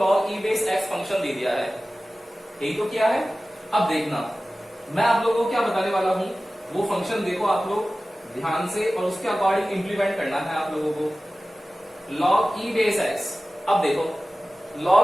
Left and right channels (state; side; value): normal; both; correlation 0.96